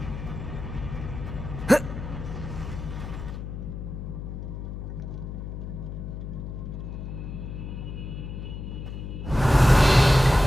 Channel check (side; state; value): left; noise; hum, 7 dB below the sound